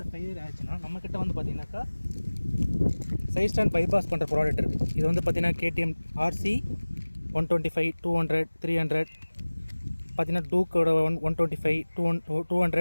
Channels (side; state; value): both; inverted; correlation -1.00